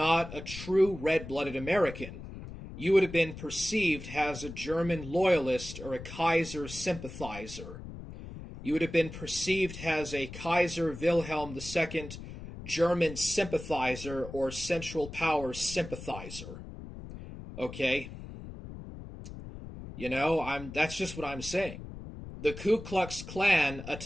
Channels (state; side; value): noise; left; rumble, 12 dB below the sound